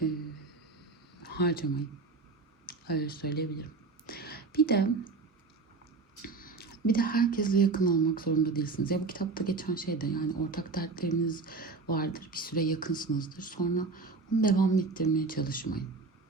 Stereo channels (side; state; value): left; quieter; 3.9 dB